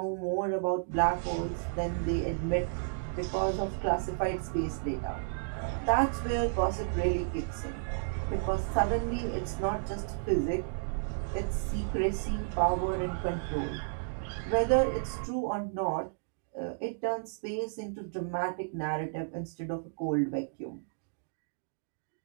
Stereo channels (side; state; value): left; silent; digital silence